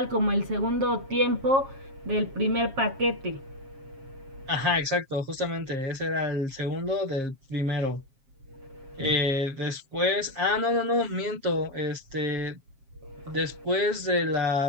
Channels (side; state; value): left; late; 7.4 ms